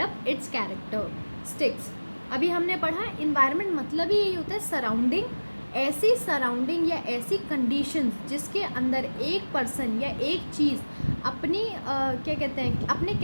its characteristics. अभी हमने पढ़ा environment मतलब ही यही होता है सराउंडिंग. ऐसी सराउंडिंग या ऐसी कंडीशंस जिसके अंदर एक पर्सन या एक चीज़ अपनी क्या कहते हैं, अपने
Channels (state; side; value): inverted; both; correlation -1.00